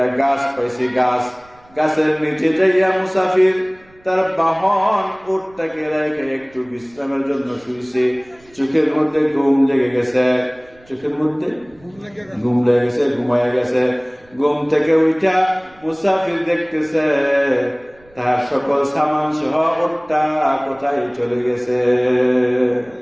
গাছ পাইছে, গাছের নিচে যাইয়া মুসাফির তার বাহন উটটাকে রেখে একটু বিশ্রামের জন্য শুইছে। চোখের মধ্যে ঘুম লেগে গেছে, চোখের মধ্যে ঘুম লেগে গেছে, ঘুমায় গেছে। ঘুম থেকে উঠা মুসাফির দেখতেছে তার সকল সামান সহ উটটা কোথায় চলে গেছে।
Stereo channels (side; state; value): right; noise; rumble, 29 dB below the sound